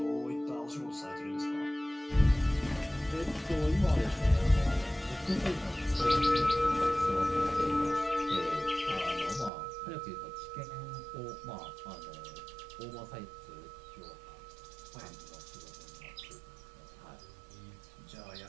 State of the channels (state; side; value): drops out; left; at 9.5 s